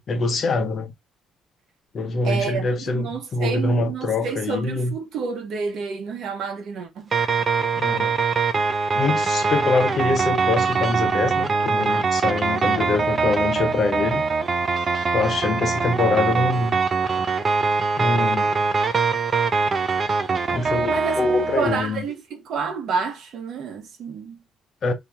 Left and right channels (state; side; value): normal; both; correlation 0.76